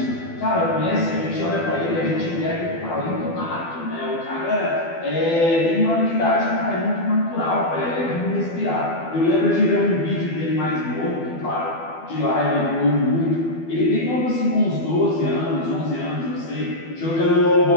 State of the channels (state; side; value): late; right; 12 ms